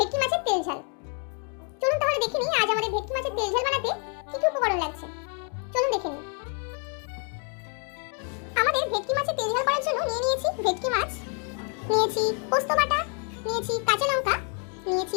মাছের তেল ঝাল। চলুন তাহলে দেখে নিই আজ আমাদের ভেটকি মাছের তেল ঝাল বানাতে কি কি উপকরণ লাগছে। চলুন দেখে নিই। আমাদের ভেটকি মাছের তেল ঝাল করার জন্য নিয়ে নিয়েছি ভেটকি মাছ, নিয়েছি পোস্ত বাটা, নিয়েছি কাঁচা লঙ্কা, নিয়েছি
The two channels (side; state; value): right; quieter; 38.0 dB